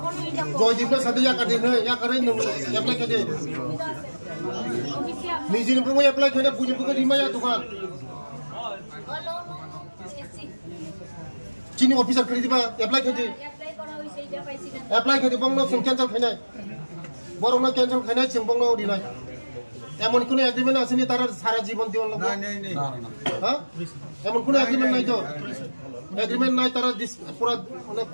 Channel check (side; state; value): both; inverted; correlation -1.00